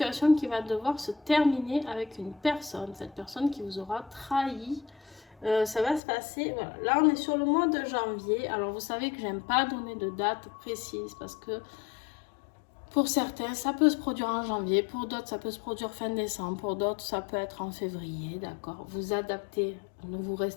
qui va devoir se terminer avec une personne. Cette personne qui vous aura trahi. Ça va se passer, voilà. Là, on est sur le mois de janvier. Alors, vous savez que j'aime pas donner de date précise parce que pour certains, ça peut se produire en janvier. Pour d'autres, ça peut se produire fin décembre. Pour d'autres, ça peut être en février, d'accord? Vous adaptez. Ne vous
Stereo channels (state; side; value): drops out; right; at 6.0 s